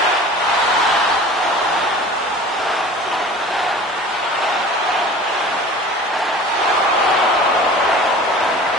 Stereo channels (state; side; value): normal; both; correlation 0.41